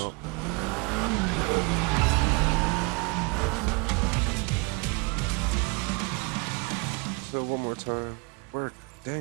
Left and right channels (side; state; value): left; quieter; 29.9 dB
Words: up. So one more time. Work.